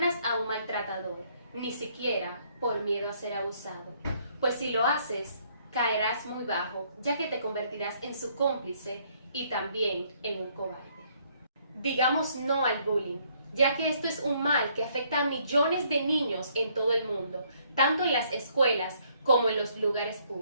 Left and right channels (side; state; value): both; inverted; correlation -0.67